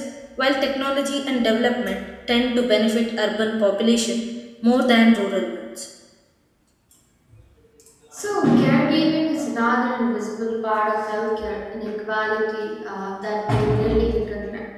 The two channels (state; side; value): identical; both; correlation 1.00